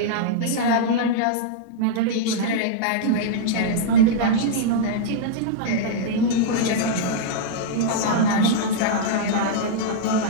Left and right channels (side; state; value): both; different; correlation -0.02